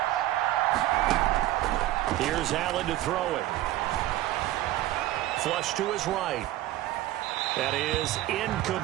Here's Allen to throw it. Flush to his right. That is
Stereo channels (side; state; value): left; quieter; 15.1 dB